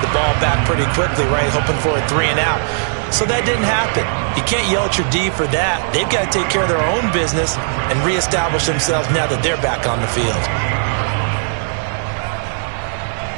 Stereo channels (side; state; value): left; silent; digital silence